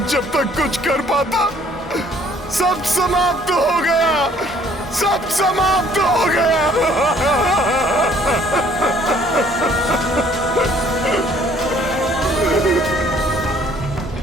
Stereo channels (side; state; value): both; normal; correlation 0.59